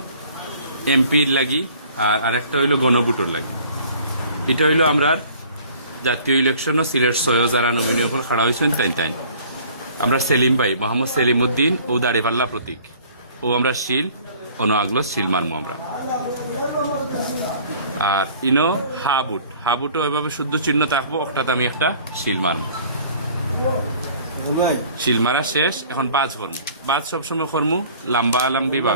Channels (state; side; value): inverted; both; correlation -0.52